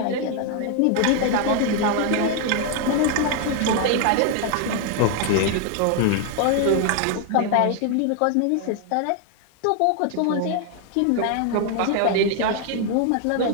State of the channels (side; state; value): both; different; correlation 0.00